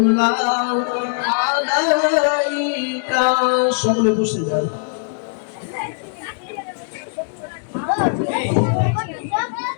আলাইকা। সকলে বসে যান।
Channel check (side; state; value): right; silent; digital silence